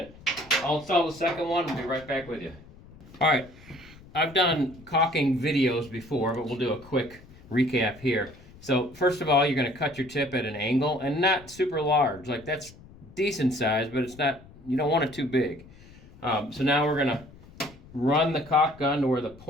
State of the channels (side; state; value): left; noise; rumble, 21 dB below the sound